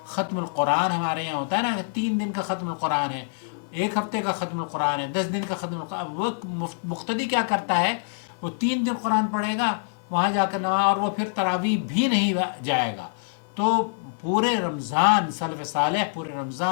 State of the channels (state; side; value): silent; right; digital silence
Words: ختم القرآن ہمارے یہاں ہوتا ہے نا، 3 دن کا ختم القرآن ہے، 1 ہفتے کا ختم القرآن ہے، 10 دن کا ختم القرآن. اب وہ مقتدی کیا کرتا ہے، وہ 3 دن قرآن پڑھے گا، وہاں جا کر نماز، اور وہ پھر تراویح بھی نہیں جائے گا. تو پورے رمضان سلف صالح پورے